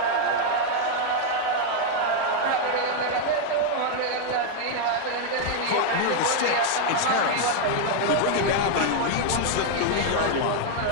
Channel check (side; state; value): both; different; correlation 0.00